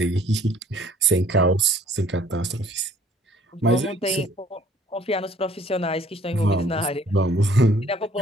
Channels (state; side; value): normal; both; correlation 0.56